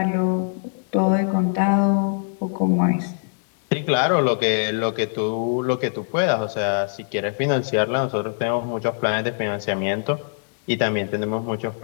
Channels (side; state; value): right; silent; digital silence